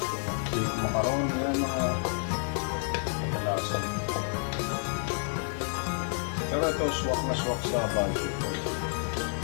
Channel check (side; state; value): right; silent; digital silence